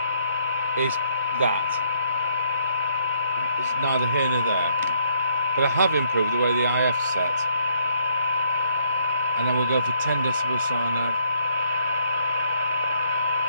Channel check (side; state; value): both; inverted; correlation -0.71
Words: is that. It's neither here nor there. But I have improved the way the IF's set. And then we'll go for 10 decibel cyanide.